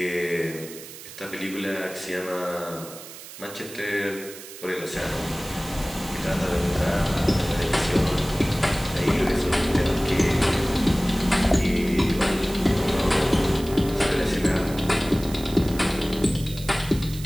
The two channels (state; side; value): noise; right; hiss, 15 dB below the sound